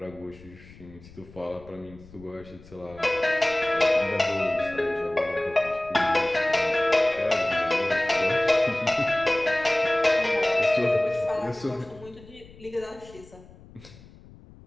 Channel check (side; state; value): left; noise; rumble, 22 dB below the sound